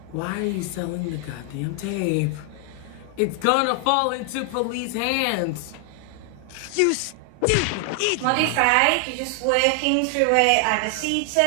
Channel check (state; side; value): different; both; correlation 0.00